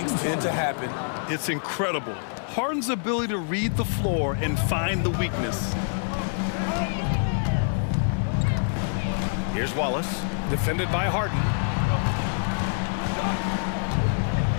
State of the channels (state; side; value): silent; right; digital silence